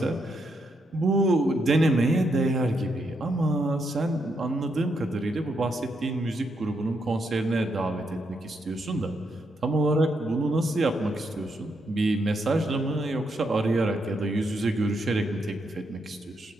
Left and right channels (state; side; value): normal; both; correlation 0.79